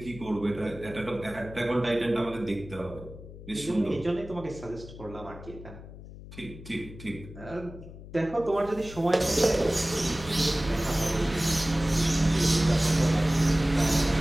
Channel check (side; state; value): left; noise; hum, 15 dB below the sound